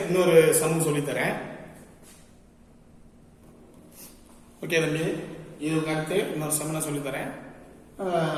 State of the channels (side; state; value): both; identical; correlation 1.00